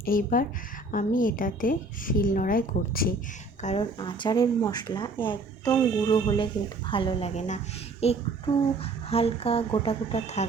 এইবার আমি এটাতে শিলনোড়ায় করছি, কারণ আচারের মশলা একদম গুঁড়ো হলে কিন্তু ভালো লাগে না, একটু হালকা গোটা গোটা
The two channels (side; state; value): left; quieter; 3.4 dB